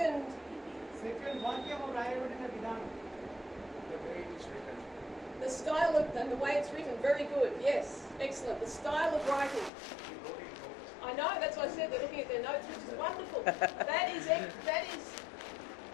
వాక్యము రాయబడిన విధానం. The style of and the way it's written, very good. Yes, excellent. The style of writing. I know, that's why I said they're looking at their notes, which is wonderful. that is,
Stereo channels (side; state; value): right; drops out; at 9.7 s